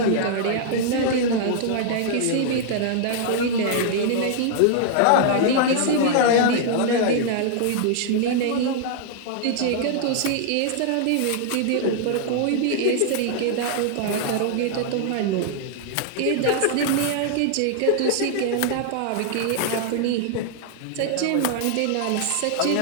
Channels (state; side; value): different; both; correlation -0.01